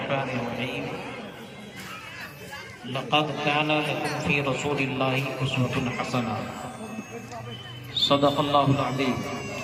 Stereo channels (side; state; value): both; identical; correlation 1.00